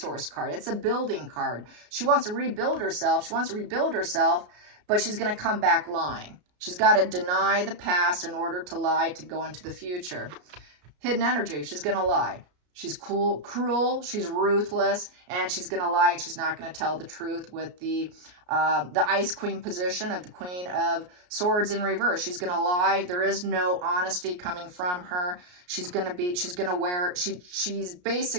card. It's a building card. She wants to rebuild herself. She wants to rebuild herself, but she's going to come back lying. She's got to deny the past in order to lie to go into the future. Hidden energy. She's going to lie. She's cruel, she's ruthless, and she's going to lie, and she's not going to tell the truth with the Ice Queen position of the Queen of Swords in reverse. She's going to lie. There is no honesty coming from her. She's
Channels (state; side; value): late; left; 33 ms